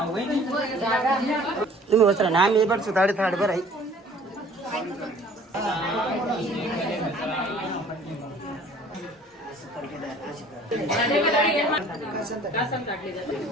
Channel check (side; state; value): both; normal; correlation 0.51